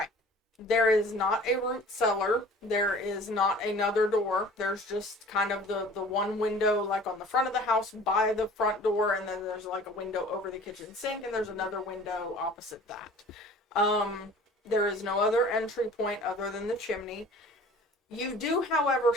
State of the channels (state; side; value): normal; both; correlation 0.46